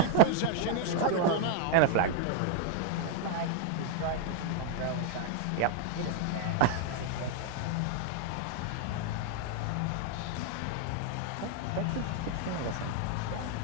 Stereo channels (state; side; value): different; both; correlation 0.00